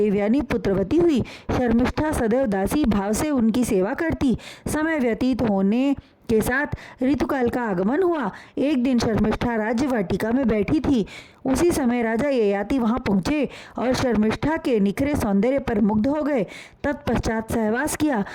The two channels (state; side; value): identical; both; correlation 1.00